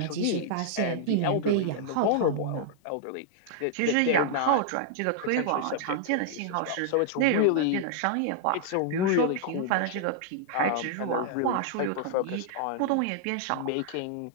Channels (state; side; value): different; both; correlation -0.01